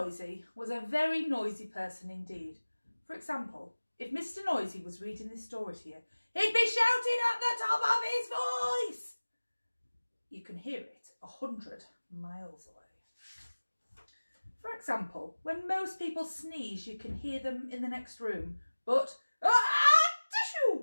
was a very noisy person indeed. For example, if Mr. Noisy was reading this story to you, he'd be shouting at the top of his voice. You can hear it 100 miles away. For example, when most people sneeze, you can hear them in the next room. But,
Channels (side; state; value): both; inverted; correlation -1.00